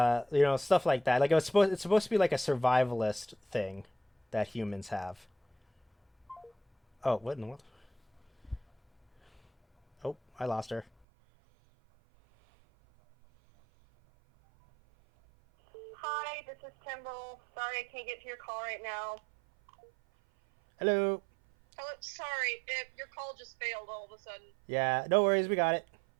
like that. Like it's supposed to be like a survivalist thing that humans have. Oh, what in the world? Oh, I lost her. this is Timbrel. Sorry I can't get to your call right now. Hello. Oh, sorry, your call just failed all of a sudden. Yeah, no worries, we got it.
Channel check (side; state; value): left; drops out; at 11.1 s